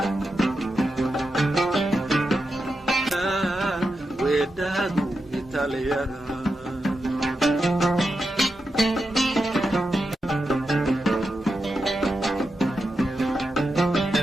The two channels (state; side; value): normal; both; correlation 0.88